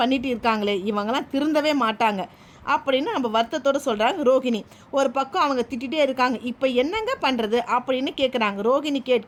இருக்காங்களே, இவங்கெல்லாம் திருந்தவே மாட்டாங்க அப்படின்னு நம்ம வருத்தத்தோடு சொல்கிறாங்க ரோகிணி. ஒரு பக்கம் அவங்க திட்டிகிட்டே இருக்காங்க. இப்போ என்னங்க பண்ணுறது அப்படின்னு கேட்குறாங்க. ரோகிணி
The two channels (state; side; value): identical; both; correlation 1.00